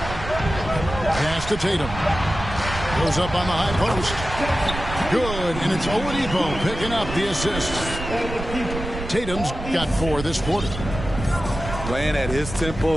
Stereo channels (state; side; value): noise; right; rumble, 8 dB below the sound